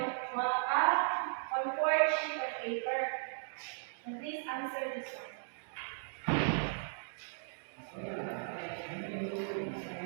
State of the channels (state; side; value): silent; left; digital silence